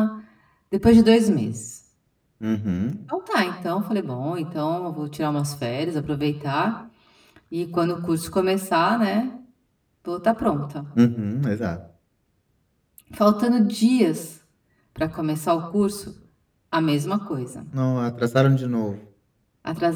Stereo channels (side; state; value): both; identical; correlation 1.00